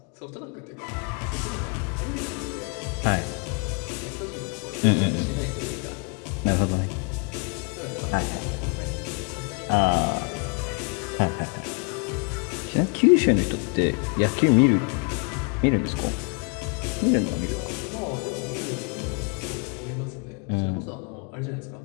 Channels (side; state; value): right; quieter; 34.6 dB